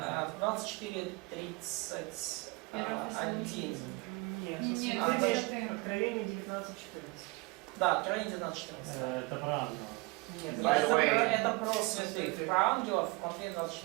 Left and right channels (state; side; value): quieter; left; 25.5 dB